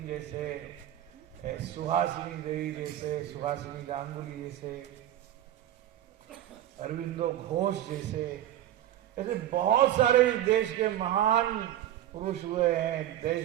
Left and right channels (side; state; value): left; quieter; 12.5 dB